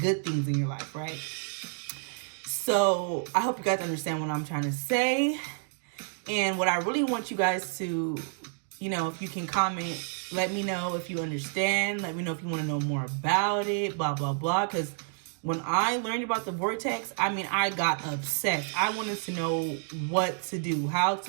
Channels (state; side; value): silent; left; 55 dB below the other